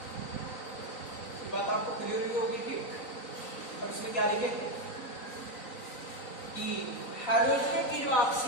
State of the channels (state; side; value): late; right; 3.9 ms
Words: बात आपको क्लियर ही होगी, ठीक। और इसमें क्या लिखेंगे कि हाइड्रोजन की जो